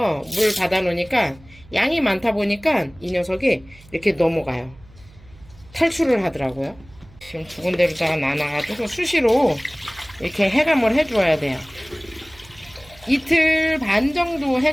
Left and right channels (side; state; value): right; noise; hum, 24 dB below the sound